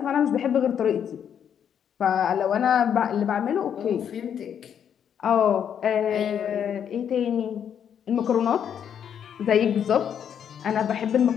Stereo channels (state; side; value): quieter; right; 8.5 dB